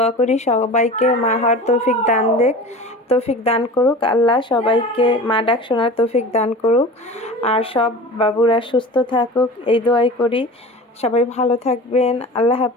করি সবাইকে মা হওয়ার তৌফিক দান করুক আল্লাহ, সবাইকে মা ডাক শোনার তৌফিক দান করুক, আর সব বাবুরা সুস্থ থাকুক এই দোয়াই করি। সবাই ভালো থাকবেন। আল্লাহ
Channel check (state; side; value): normal; both; correlation 0.36